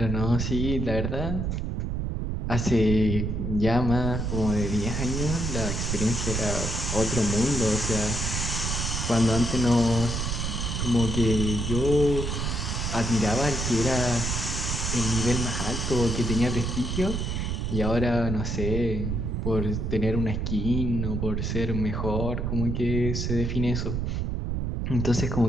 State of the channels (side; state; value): right; noise; rumble, 1 dB below the sound